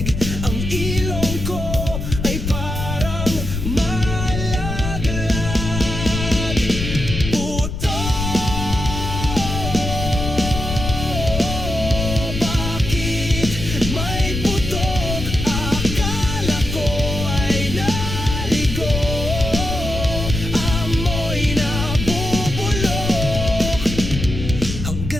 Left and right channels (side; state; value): left; noise; rumble, 5 dB below the sound